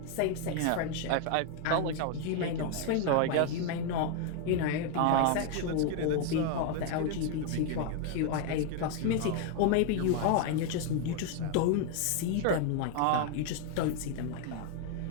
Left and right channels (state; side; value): different; both; correlation 0.01